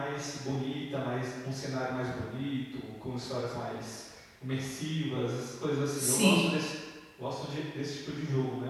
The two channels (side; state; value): both; identical; correlation 1.00